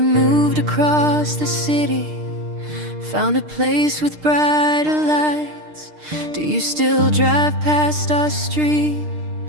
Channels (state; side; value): late; left; 6.6 ms